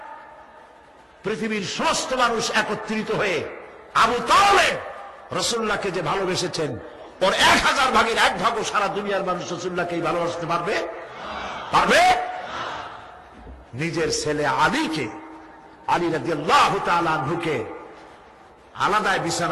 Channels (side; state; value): both; identical; correlation 1.00